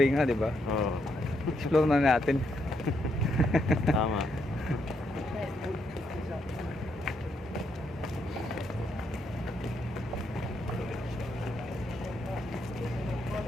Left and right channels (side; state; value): both; normal; correlation 0.78